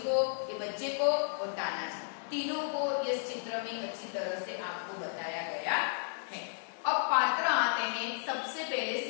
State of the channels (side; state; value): right; silent; digital silence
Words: ये बच्चे को और तानाजी, तीनों को इस चित्र में अच्छी तरह से आपको बताया गया है। अब पात्र आते हैं। सबसे पहले